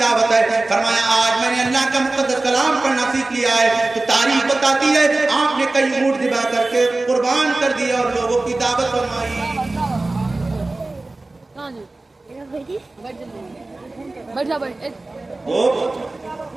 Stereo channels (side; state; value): left; quieter; 3.1 dB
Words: ہے؟ فرمایا آج میں نے اللہ کا مقدس کلام پڑھنا سیکھ لیا ہے. تو تاریخ بتاتی ہے آپ نے کئی اونٹ ذبح کر کے قربان کر دیا اور لوگوں کی دعوت فرمائی. وہ